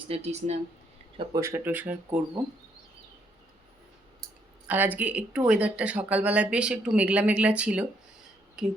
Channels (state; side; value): normal; both; correlation 0.72